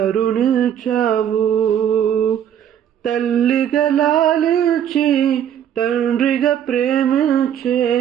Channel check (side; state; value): left; quieter; 9.6 dB